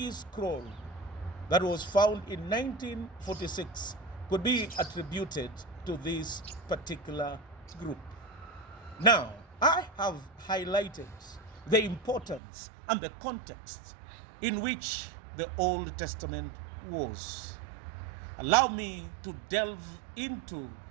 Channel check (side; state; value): left; drops out; at 12.4 s